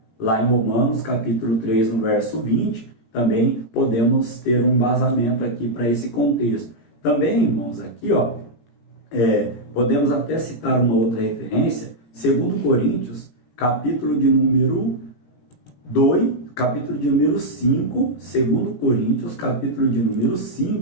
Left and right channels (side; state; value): right; late; 17 ms